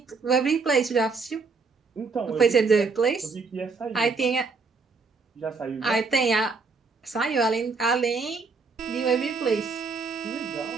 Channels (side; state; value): left; quieter; 4.5 dB